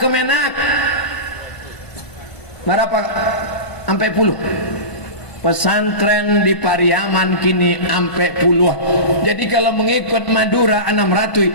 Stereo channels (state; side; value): late; right; 1.5 ms